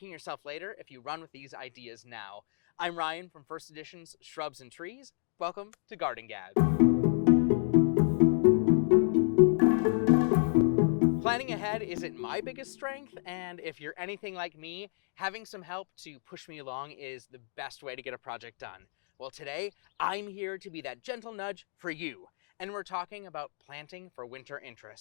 yourself later if you run with these ideas now. I'm Ryan from First Edition's Shrubs and Trees. Welcome to Garden Gab. Planning ahead isn't my biggest strength, and if you're anything like me, having some help to push me along is the best way to get a project done. Well, today, I'm here to be that gentle nudge for you, and we're talking about planting for winter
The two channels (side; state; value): right; silent; digital silence